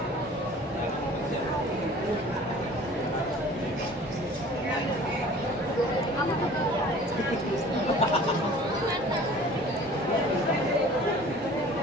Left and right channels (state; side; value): normal; both; correlation 0.46